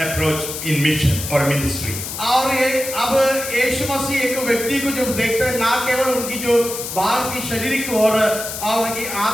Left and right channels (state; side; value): noise; left; hiss, 7 dB below the sound